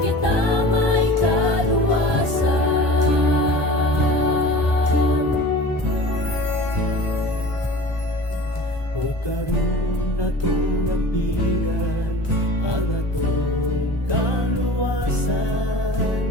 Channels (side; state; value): right; late; 1.2 ms